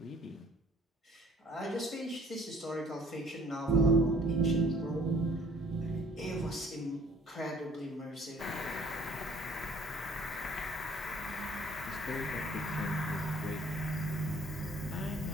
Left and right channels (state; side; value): normal; both; correlation 0.56